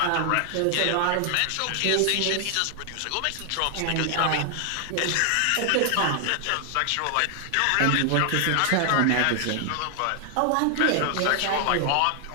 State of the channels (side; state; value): both; different; correlation 0.00